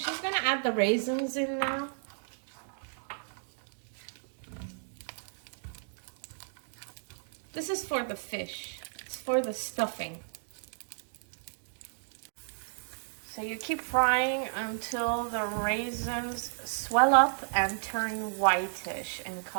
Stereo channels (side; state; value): left; silent; digital silence